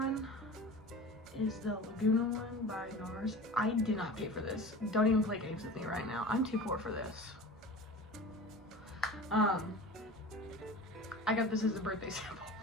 is the Laguna one by NARS. I did not pay for this. Don't even play games with me right now. I'm too poor for this. I got this as a birthday sample.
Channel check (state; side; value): normal; both; correlation 0.36